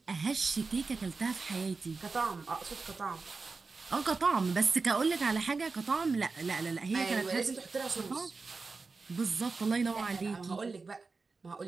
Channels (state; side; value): quieter; left; 4.2 dB